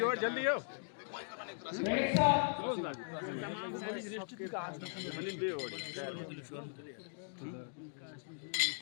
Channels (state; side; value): silent; right; digital silence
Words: जल्दी आओ तमाम सालों से रिश्ते का